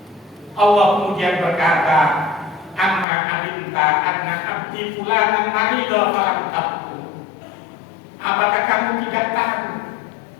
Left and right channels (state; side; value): drops out; right; at 3.1 s